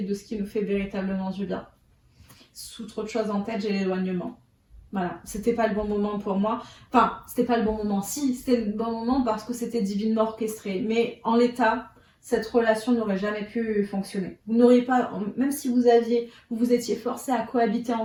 et de ce qui nous fait véritablement du bien. Sous trop de choses en tête, j'ai l'éloignement. Voilà, c'était pas le bon moment pour moi. Enfin, c'était pas le bon moment. Si, c'était le bon moment parce que c'était divinement orchestré. Mais en l'état, cette relation n'aurait jamais pu fonctionner. Vous n'auriez pas, même si vous étiez forcés à cohabiter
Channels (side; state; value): both; identical; correlation 1.00